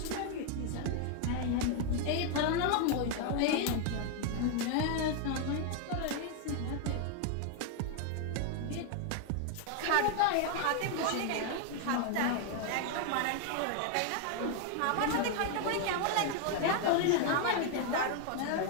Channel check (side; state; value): both; different; correlation 0.00